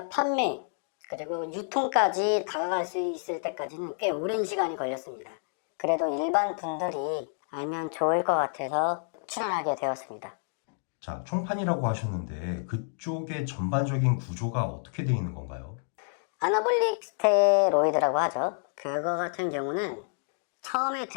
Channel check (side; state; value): right; silent; digital silence